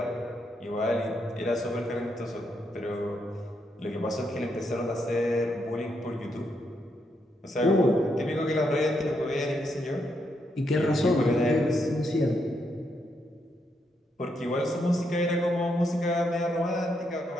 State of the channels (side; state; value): both; normal; correlation 0.79